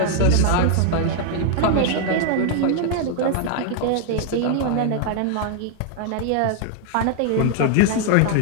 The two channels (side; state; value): both; different; correlation 0.00